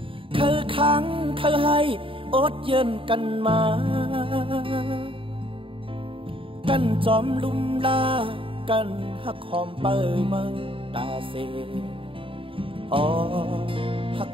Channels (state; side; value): late; left; 0.26 ms